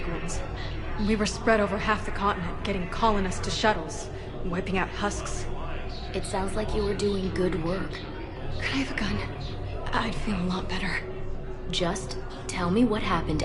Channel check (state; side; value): identical; both; correlation 1.00